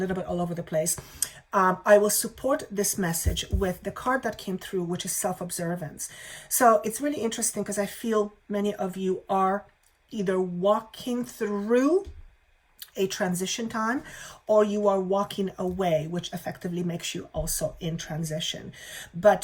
bit all over the place. I will support this message with the card that came through, which is self-observance. So it's really interesting because I feel many of you are either walking through a transition time, or you are walking away, which effectively makes you also in transition.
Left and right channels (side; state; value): both; identical; correlation 1.00